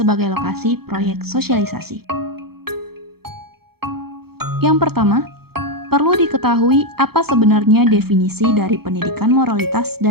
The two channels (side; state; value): left; late; 0.95 ms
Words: lokasi proyek sosialisasi. Yang pertama, perlu diketahui apa sebenarnya definisi dari pendidikan moralitas